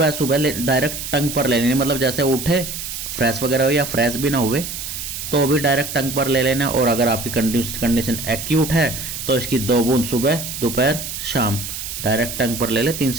सुबह डायरेक्ट टंग पर ले लेनी। मतलब जैसे उठे, फ्रेश वगैरह हो या फ्रेश भी ना हुए, तो भी डायरेक्ट टंग पर ले लेना। और अगर आपकी कंडीशन एक्यूट है तो इसकी 2 बूंद सुबह, दोपहर, शाम डायरेक्ट टंग पर ले ले। 3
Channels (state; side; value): noise; right; hiss, 7 dB below the sound